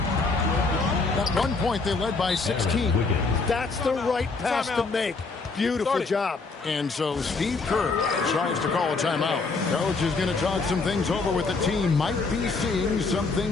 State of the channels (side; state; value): right; quieter; 4.1 dB